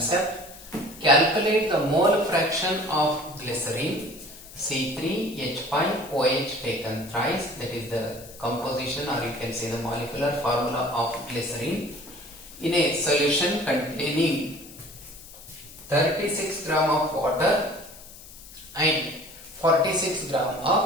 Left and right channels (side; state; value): left; noise; hiss, 18 dB below the sound